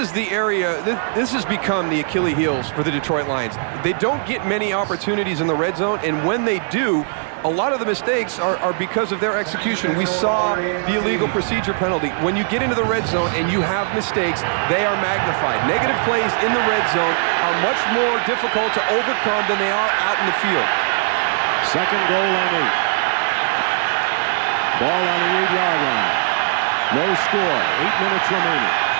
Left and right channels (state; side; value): silent; left; 66 dB below the other